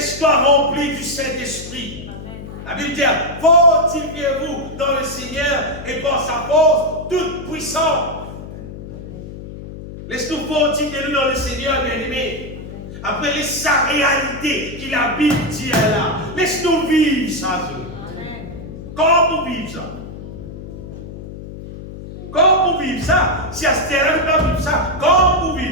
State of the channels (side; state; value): left; noise; hum, 12 dB below the sound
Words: remplir du Saint-Esprit. La Bible dit, fortifiez-vous dans le Seigneur et par sa force toute puissante. Laisse-nous fortifier dans le Seigneur, bien-aimé. Après sa réalité qui la Bible dit là. Laisse-nous vivre ça. Comment pour vivre ça? Comment pour vivre ça? Si à ce terrain, nous pas vivre ça, comment pour